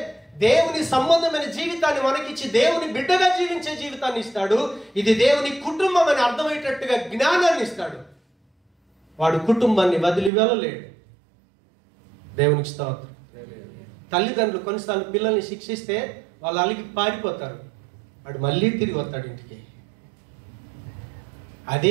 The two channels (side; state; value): left; drops out; at 10.3 s